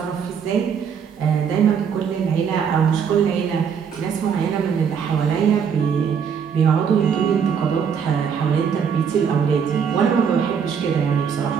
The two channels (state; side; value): quieter; left; 7.1 dB